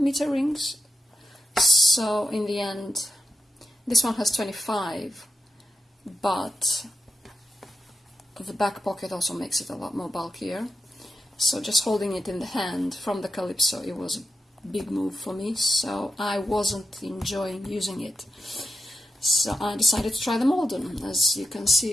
rings. So in the end, this one has 25, but the back pocket also makes it a lot more bulkier. So just holding it in the hand from the Calypso, it was a big move for me, so I wasn't enjoying using it. So I decided to try the Malden. As you can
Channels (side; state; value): both; normal; correlation 0.86